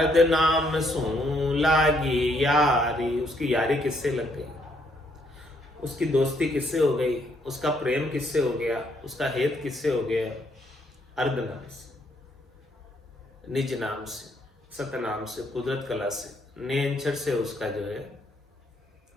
नाम सो लागी यारी। उसकी यारी किससे लग गई, उसकी दोस्ती किससे हो गई, उसका प्रेम किससे हो गया, उसका हेत किससे हो गया? अर्ध नाम से, निज नाम से, सतनाम से, कुदरत कला से, नेंचर से उसका जो है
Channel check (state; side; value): normal; both; correlation 0.71